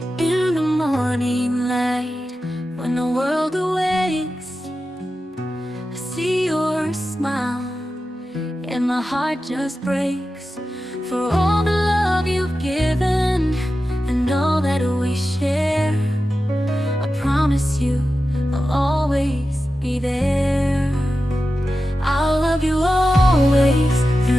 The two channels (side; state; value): both; normal; correlation 0.92